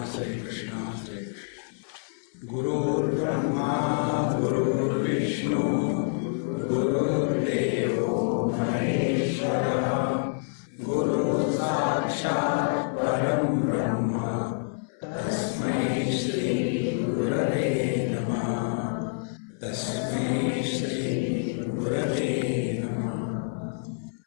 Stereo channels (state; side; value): silent; right; 60 dB below the other